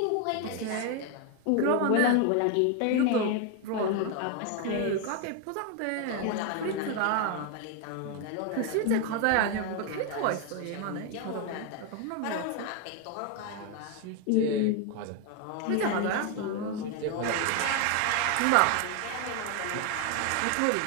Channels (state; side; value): different; both; correlation 0.01